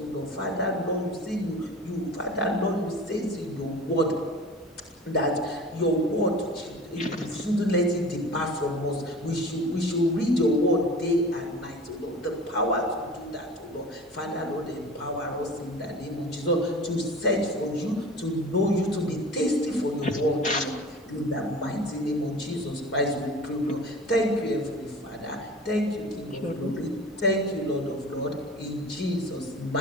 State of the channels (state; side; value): normal; both; correlation 0.39